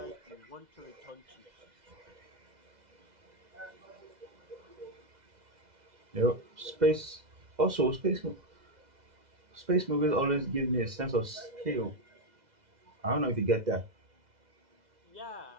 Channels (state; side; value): late; left; 2.0 ms